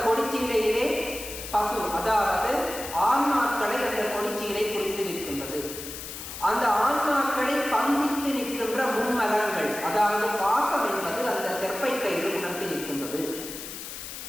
கொடிச்சீலையிலே பசு, அதாவது ஆன்மாக்களை அந்த கொடிச்சீலை குறித்து நிற்கின்றது. அந்த ஆன்மாக்களை பந்தித்து நிற்கின்ற மும்மலங்கள், அதாவது பாசம் என்பது அந்த தெற்பை கயிறு உணர்த்தி நிற்கின்றது.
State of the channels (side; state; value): left; noise; hiss, 10 dB below the sound